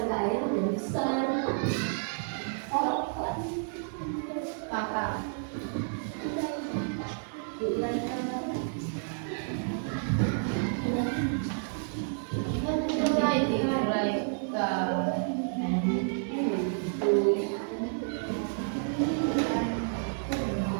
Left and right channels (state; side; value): silent; left; 57 dB below the other